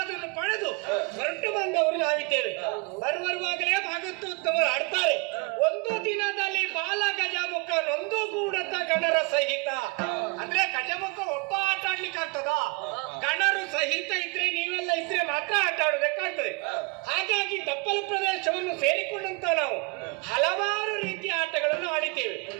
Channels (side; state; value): left; quieter; 30.2 dB